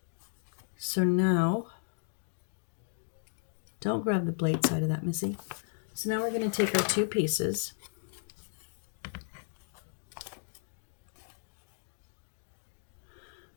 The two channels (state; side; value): silent; right; digital silence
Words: So now, don't grab the blade side of that, Missy. So now we're going to take our two pieces.